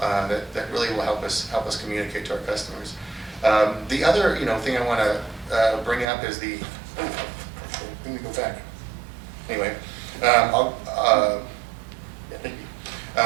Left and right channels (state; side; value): drops out; left; at 6.1 s